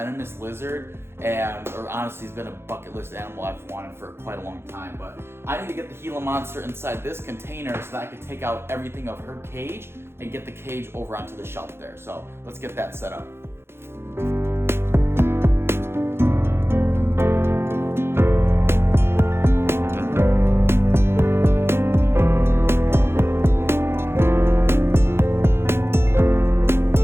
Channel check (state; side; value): late; left; 0.12 ms